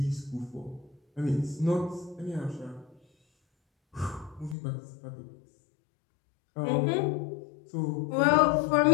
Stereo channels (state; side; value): drops out; right; at 4.5 s